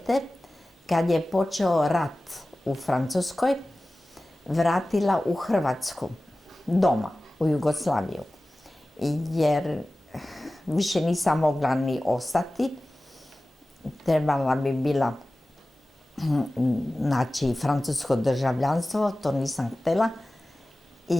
kad je počeo rat u Francuskoj vratila u Hrvatsku, doma, u Jugoslaviju. Jer više nisam mogla ni ostati, trebala bi bila naći francusko državljanstvo, to nisam htjela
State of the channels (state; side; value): normal; both; correlation 0.97